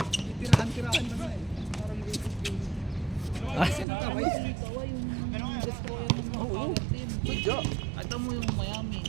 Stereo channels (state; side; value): drops out; left; at 3.9 s